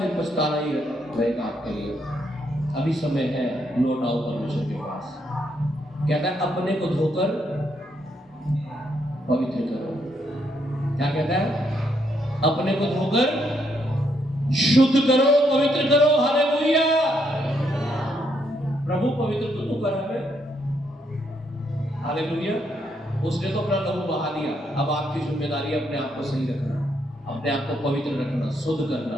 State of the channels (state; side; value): normal; both; correlation 0.75